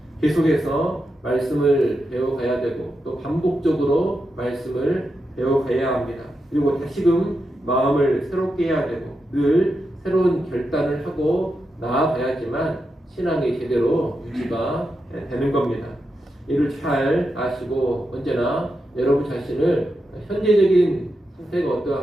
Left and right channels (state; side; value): normal; both; correlation 0.87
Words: 계속해서 말씀을 배워가야 되고 또 반복적으로 말씀을 배워가야 합니다. 그리고 다시금 마음을 새롭게 해야 되고 늘 새로운 결단을 하고 나아가야지만 신앙이 제대로 유지가 되는 겁니다. 이를 잘 아시고 언제나 여러분 자신을 현재적인 상태가